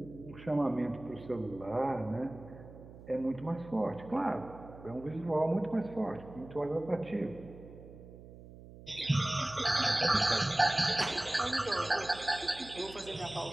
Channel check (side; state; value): right; noise; hum, 17 dB below the sound